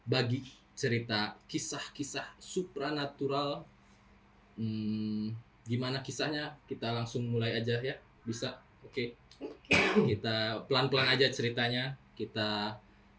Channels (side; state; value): both; identical; correlation 1.00